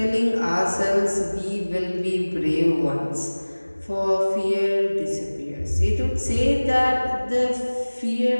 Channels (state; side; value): inverted; both; correlation -1.00